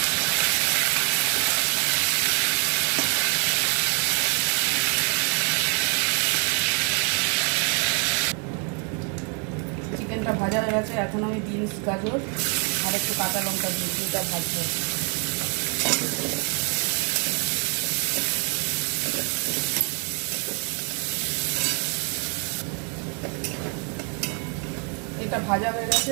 চিকেনটা ভাজা হয়ে গেছে। এখন আমি বিনস, গাজর আর একটু কাঁচা লঙ্কা দিয়ে দুটা ভাজবো। এটা ভাজা হয়ে গেছে।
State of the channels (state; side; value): quieter; left; 38.3 dB